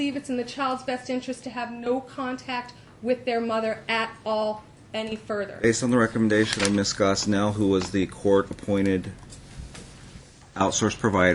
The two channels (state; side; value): identical; both; correlation 1.00